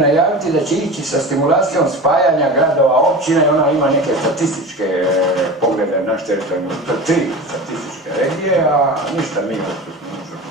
da će ići sa stimulacijom spajanja gradova, općina i ona ima neke statističke poglede naš teritorijalni, to je 3 statističke regije, a ništa mi što smo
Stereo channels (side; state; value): both; normal; correlation 0.31